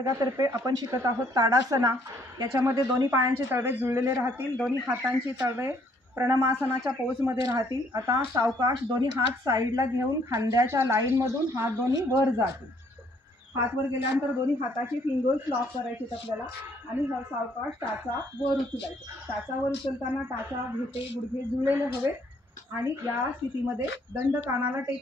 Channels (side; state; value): both; normal; correlation 0.65